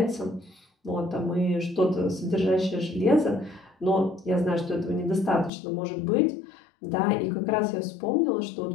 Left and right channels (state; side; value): drops out; right; at 5.5 s